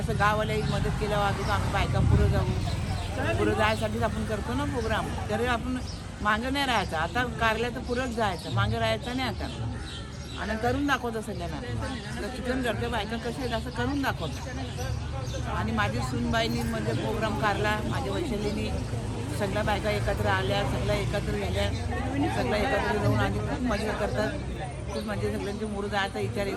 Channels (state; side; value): identical; both; correlation 1.00